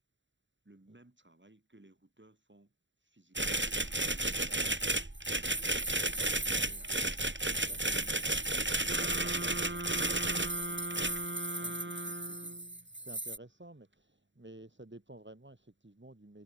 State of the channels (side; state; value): left; late; 0.54 ms